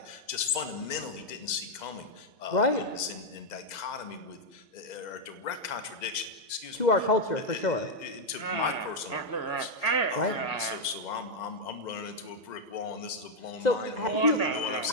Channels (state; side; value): late; right; 2.0 ms